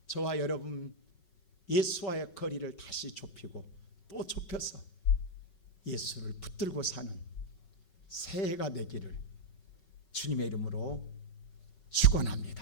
저와 여러분 예수와의 거리를 다시 좁히고 또 좁혀서 예수를 붙들고 사는 새해가 되기를 주님의 이름으로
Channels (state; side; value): late; right; 5.4 ms